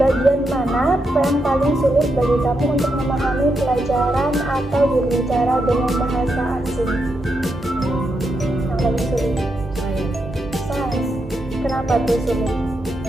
mana yang paling sulit bagi kamu untuk memahami pelajaran atau berbicara dengan bahasa asing? Yang paling sulit? Sains. Kenapa tuh sulit?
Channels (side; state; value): both; normal; correlation 0.83